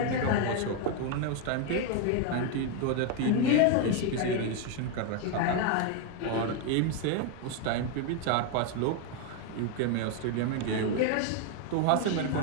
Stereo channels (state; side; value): different; both; correlation 0.01